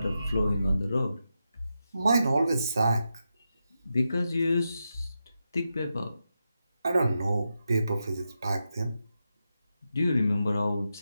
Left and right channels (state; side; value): inverted; both; correlation -0.88